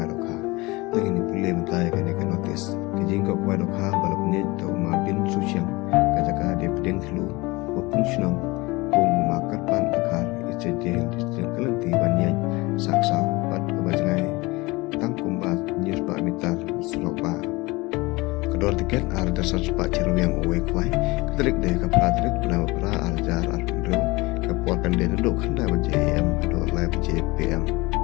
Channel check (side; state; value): right; quieter; 23.0 dB